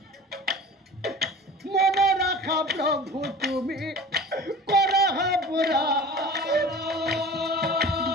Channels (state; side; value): normal; both; correlation 0.39